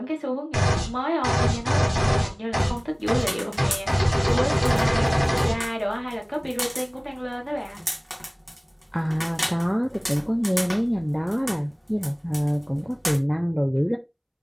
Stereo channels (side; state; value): both; identical; correlation 1.00